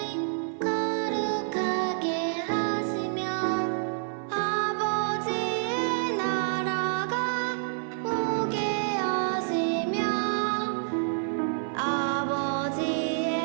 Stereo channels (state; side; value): silent; left; 56 dB below the other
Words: 거룩하게 하시며 아버지의 나라가 오게 하시며